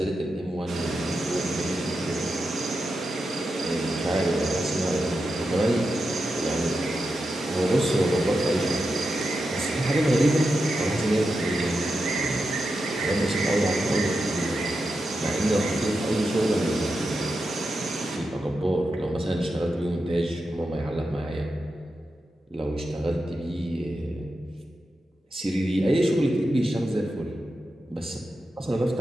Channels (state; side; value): normal; both; correlation 0.89